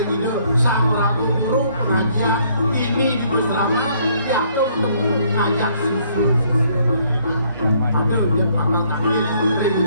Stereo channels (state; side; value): inverted; both; correlation -0.65